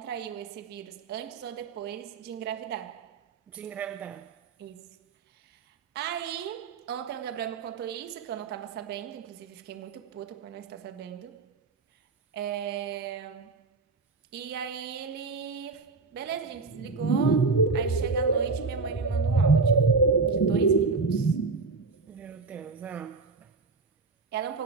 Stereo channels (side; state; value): left; quieter; 4.2 dB